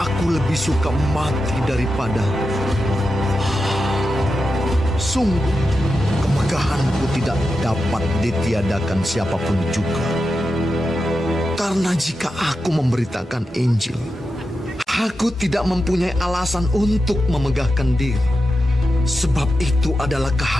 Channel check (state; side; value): normal; both; correlation 0.89